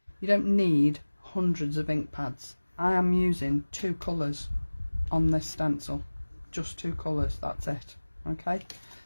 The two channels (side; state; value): both; inverted; correlation -1.00